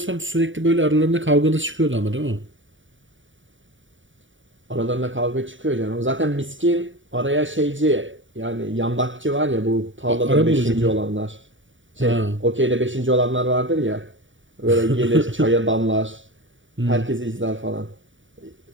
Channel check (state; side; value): late; left; 0.56 ms